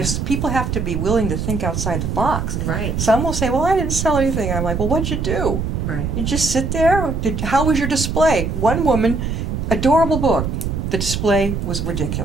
People have to be willing to think outside the box. Right, Some will say, well, I didn't sell anything. I'm like, well, what'd you do? right. You just sit there? How was your display? One woman, adorable book. The display was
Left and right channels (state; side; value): noise; right; rumble, 2 dB below the sound